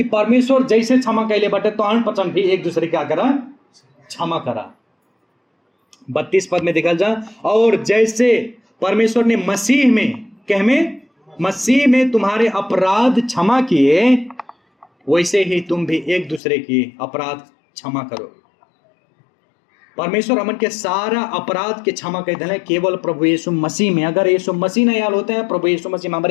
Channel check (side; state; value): right; drops out; at 16.4 s